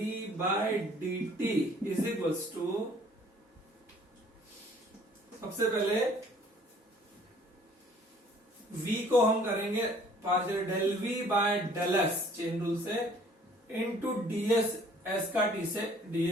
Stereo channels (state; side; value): normal; both; correlation 0.56